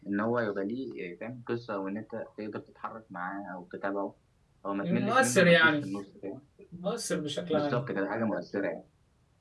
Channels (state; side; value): identical; both; correlation 1.00